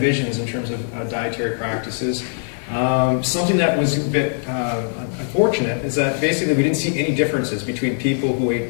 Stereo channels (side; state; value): right; silent; 62 dB below the other